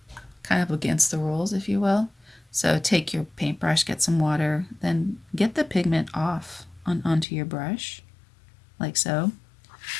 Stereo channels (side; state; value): right; drops out; at 7.2 s